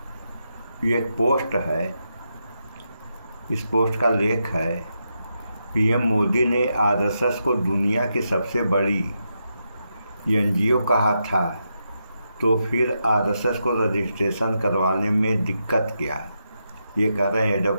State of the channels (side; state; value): both; inverted; correlation -0.84